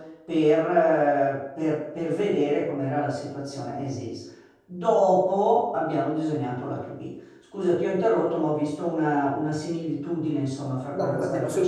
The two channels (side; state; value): both; identical; correlation 1.00